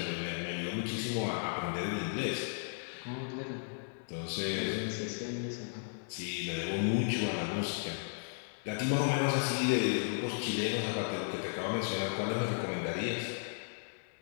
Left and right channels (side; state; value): right; silent; digital silence